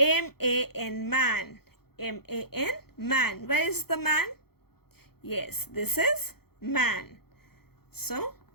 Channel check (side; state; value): right; late; 0.95 ms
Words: man. MAN, man. Where is the man? Yes, this is man. So,